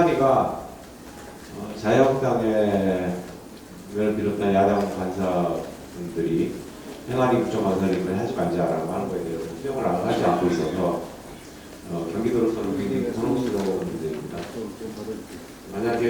자유한국당을 비롯한 야당 간사분들이 행안위 국정감사를 이번에 하지 말자라고 하는 거에 대해서 수용을 하지 않고 있어서 경기도로서는 굉장히 곤혹스러운 문제입니다.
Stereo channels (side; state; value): both; identical; correlation 1.00